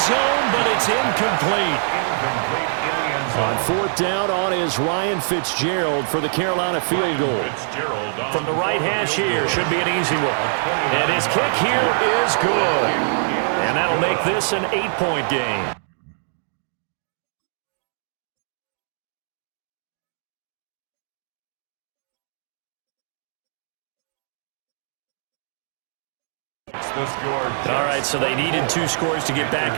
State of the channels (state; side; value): silent; left; digital silence